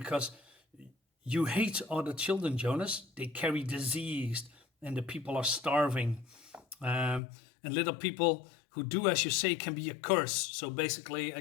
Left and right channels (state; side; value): drops out; right; at 7.2 s